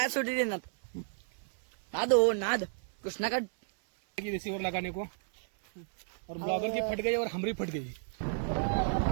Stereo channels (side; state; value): left; silent; 56 dB below the other